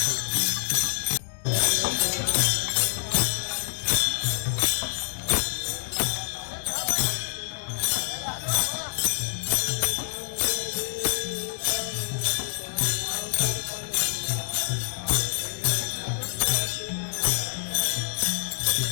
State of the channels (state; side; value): silent; right; digital silence